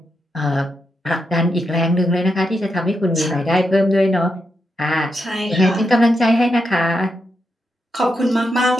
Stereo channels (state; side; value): normal; both; correlation 0.84